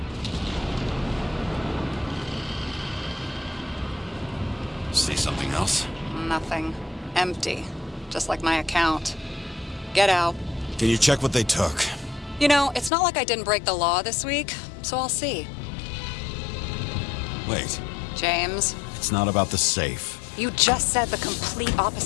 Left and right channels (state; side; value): drops out; right; at 12.9 s